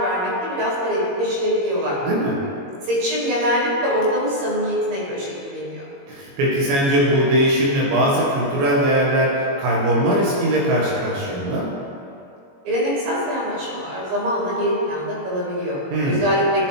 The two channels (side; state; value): left; late; 22 ms